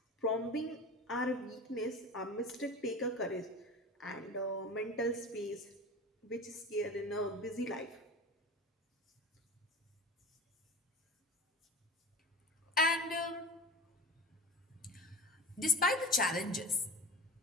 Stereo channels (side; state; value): both; normal; correlation 0.33